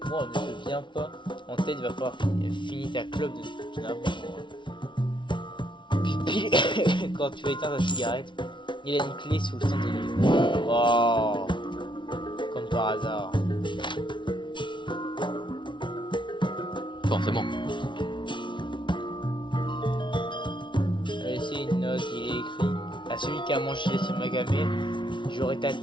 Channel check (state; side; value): late; right; 0.24 ms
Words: te viens pas en tête, il va falloir finir ta clope de n'importe quoi. Puis, quand tu vas éteindre ta cigarette, il a une clé sous le centre de l'île. Wow. Comme par hasard. Forcément. C'est une note, il est écrit à celui qui a mangé ce magamé, j'aurai ta